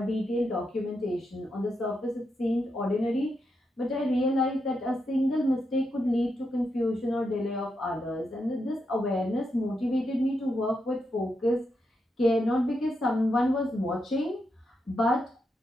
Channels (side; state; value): both; normal; correlation 0.84